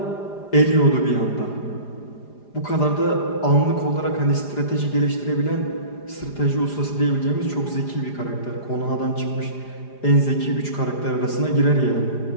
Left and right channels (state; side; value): late; right; 4.9 ms